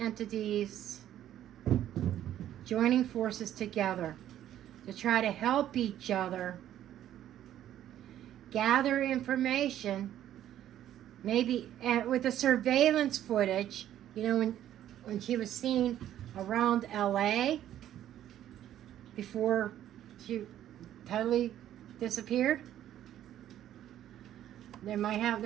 joining forces together to try to help each other gather information, maybe with the surveillance footage, you know, when she was seen around LA before she totally disappeared. There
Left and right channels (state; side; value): quieter; left; 11.7 dB